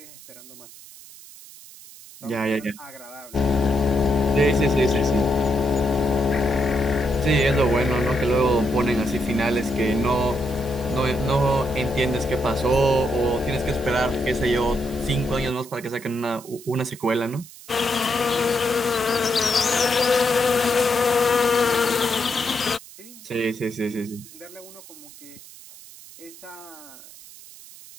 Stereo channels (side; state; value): right; noise; hiss, 19 dB below the sound